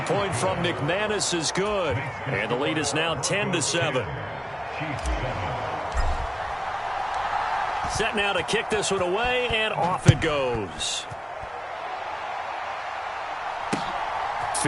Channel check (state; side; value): identical; both; correlation 1.00